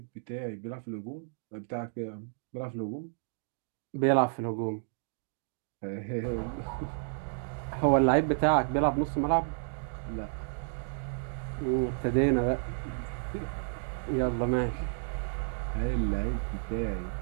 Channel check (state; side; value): silent; left; digital silence